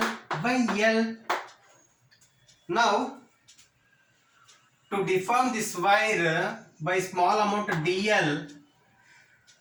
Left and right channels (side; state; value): both; identical; correlation 1.00